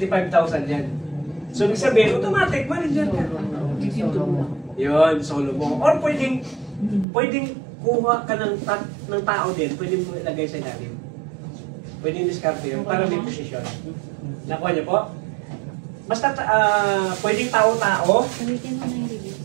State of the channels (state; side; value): drops out; left; at 7.1 s